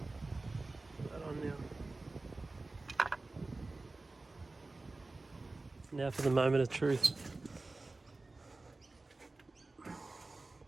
that on now. Now for the moment of truth.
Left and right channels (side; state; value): left; quieter; 3.3 dB